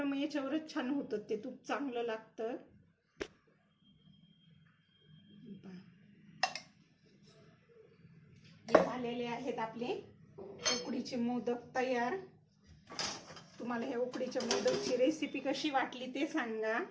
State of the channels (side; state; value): both; identical; correlation 1.00